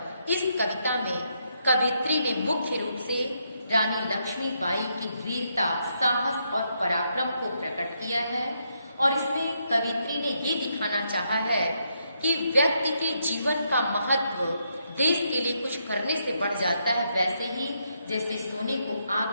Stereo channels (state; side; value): inverted; both; correlation -0.78